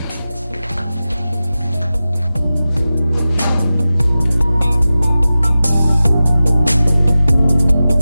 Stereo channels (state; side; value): inverted; both; correlation -0.95